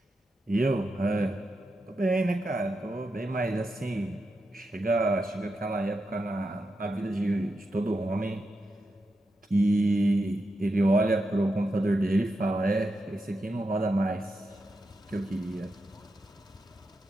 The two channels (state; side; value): normal; both; correlation 0.87